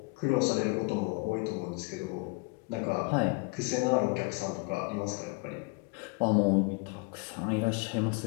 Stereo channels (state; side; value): quieter; right; 28.7 dB